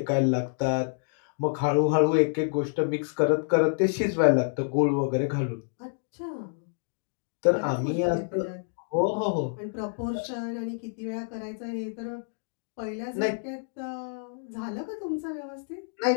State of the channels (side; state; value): right; silent; digital silence